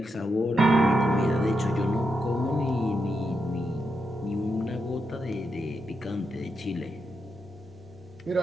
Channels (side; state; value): both; normal; correlation 0.84